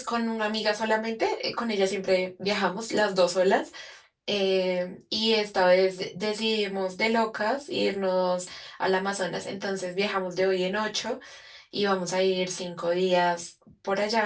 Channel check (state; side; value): identical; both; correlation 1.00